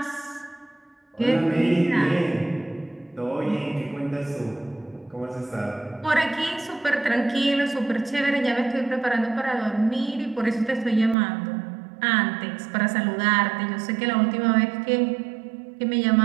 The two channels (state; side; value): drops out; left; at 11.2 s